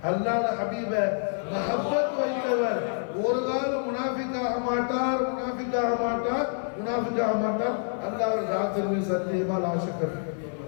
அல்லாஹ் ஹபீப மஹப்பத் வைத்தவர் ஒரு காலம் முனாஃபிக்காக மாட்டார், முனாஃபிக்காக மாட்டார், முனாஃபிக்காக மாட்டார். அல்லாஹ் ராத்திரி சத்தியமா லாஷக்கர்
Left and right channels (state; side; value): silent; right; 60 dB below the other